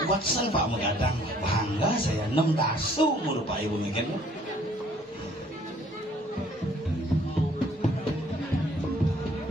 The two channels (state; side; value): normal; both; correlation 0.59